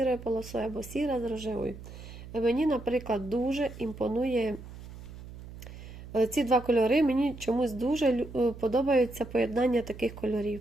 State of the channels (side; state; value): right; noise; hum, 14 dB below the sound